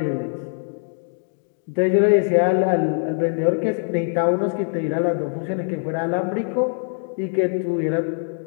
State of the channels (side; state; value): right; silent; 60 dB below the other